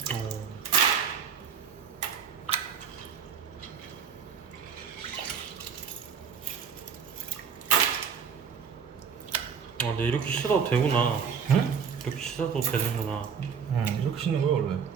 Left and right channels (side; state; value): left; quieter; 6.8 dB